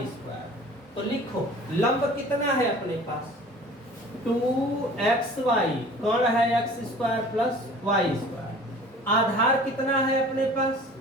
स्क्वायर, तो लिखो लंब कितना है अपने पास 2xy, कर्ण है x square plus Y square, आधार कितना है अपने पास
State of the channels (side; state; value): both; normal; correlation 0.45